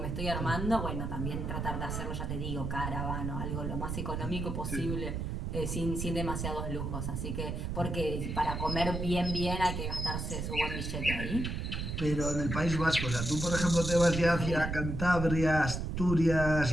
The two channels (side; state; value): right; noise; rumble, 3 dB below the sound